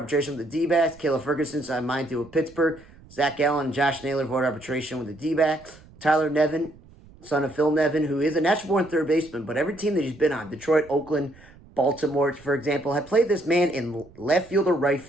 with the D-backs. Caleb Ferguson signed a minor deal with Pittsburgh. Zach Gallen and Josh Naylor avoided arbitration with the D-backs. Tyler Nevin, son of Phil Nevin, who is a natural-born third baseman, but every team that he's been on, Detroit, Oakland, Baltimore, for example, had played this man in left field or right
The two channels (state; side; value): noise; right; rumble, 24 dB below the sound